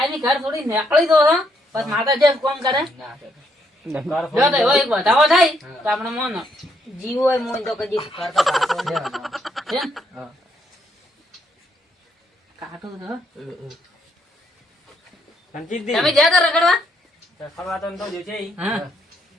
ઘર થોડી નીકળી દો છો બસ માતા જે કોમ કરે જો તો હોય બતાવો થાય તો આપણે મોનો જીવ હોય મોન તો કદી કરતો છે કાટો તો રણજીતજી તમે જ્યાં તો રખડવા રખડવા તો નતો જો છે ઈ. હા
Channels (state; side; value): normal; both; correlation 0.74